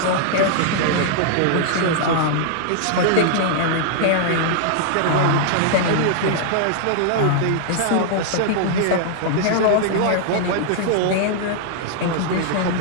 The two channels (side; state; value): both; different; correlation -0.01